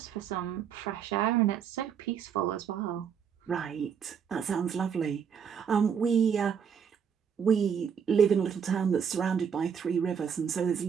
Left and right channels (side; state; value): left; quieter; 7.3 dB